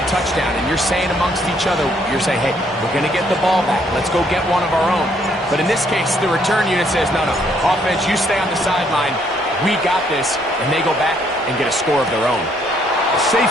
touchdown, and you're saying amongst each other, you're saying, hey, we're going to get the ball back. Let's go get one of our own. But in this case, the return unit says, no, offense, you stay on the sideline. We got this. And they go back and get a score of their own. A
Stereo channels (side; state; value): both; normal; correlation 0.68